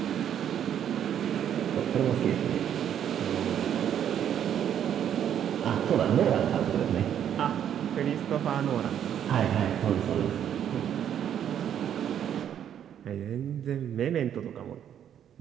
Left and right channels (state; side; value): quieter; left; 9.6 dB